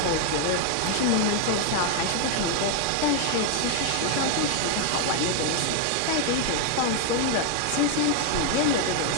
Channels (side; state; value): both; different; correlation 0.01